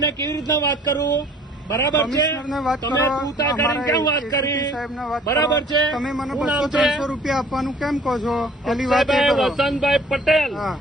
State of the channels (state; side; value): normal; both; correlation 0.53